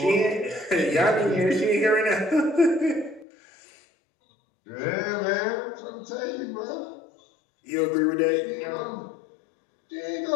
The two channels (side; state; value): right; drops out; at 3.2 s